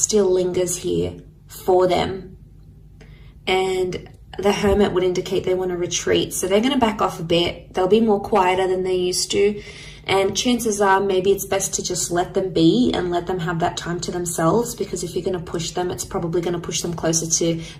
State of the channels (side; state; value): both; identical; correlation 1.00